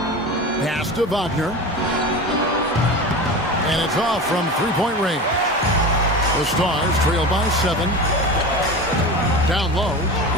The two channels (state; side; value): normal; both; correlation 0.29